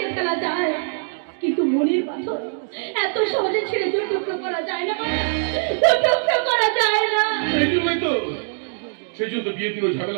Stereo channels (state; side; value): silent; left; 61 dB below the other